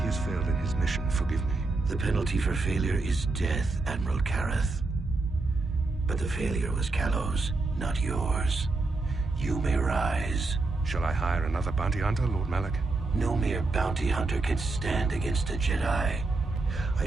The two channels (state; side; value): quieter; left; 3.4 dB